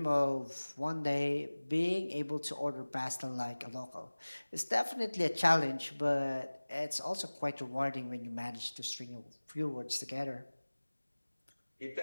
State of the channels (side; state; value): both; inverted; correlation -1.00